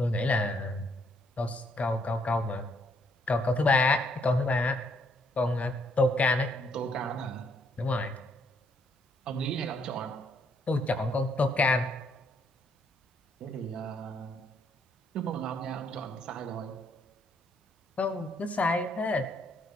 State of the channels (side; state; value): both; normal; correlation 0.70